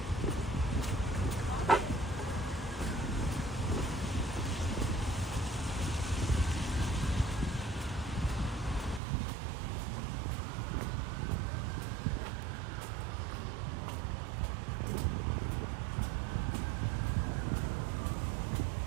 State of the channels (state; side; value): drops out; left; at 9.0 s